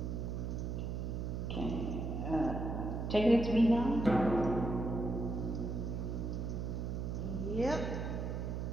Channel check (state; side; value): noise; right; hum, 3 dB below the sound